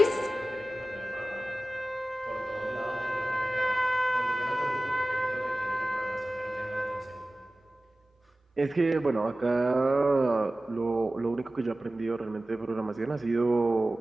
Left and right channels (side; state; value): both; normal; correlation 0.96